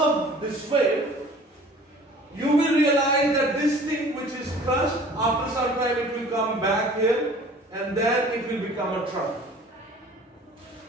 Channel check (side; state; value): both; normal; correlation 0.48